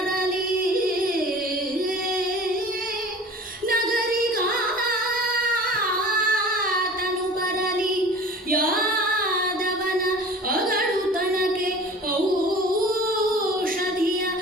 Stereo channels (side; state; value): both; normal; correlation 0.42